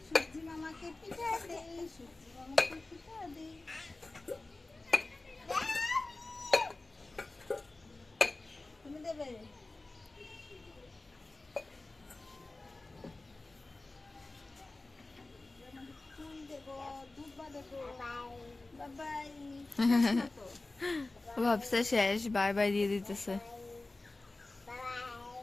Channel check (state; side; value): quieter; right; 3.1 dB